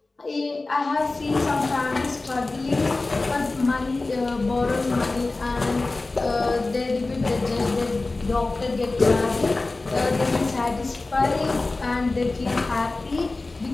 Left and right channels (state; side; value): quieter; right; 3.3 dB